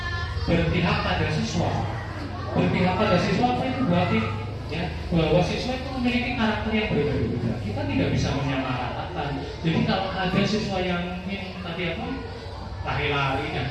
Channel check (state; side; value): identical; both; correlation 1.00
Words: berpihak pada siswa. Berpihak pada siswa apa itu berarti ya bahwa siswa itu memiliki karakter yang berbeda-beda. Kita tidak bisa menyamaratakan. Jadi kalau ada siswa yang tadi lari-lari dan